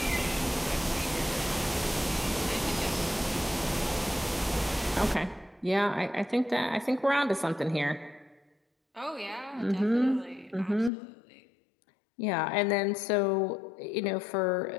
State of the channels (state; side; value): drops out; right; at 10.9 s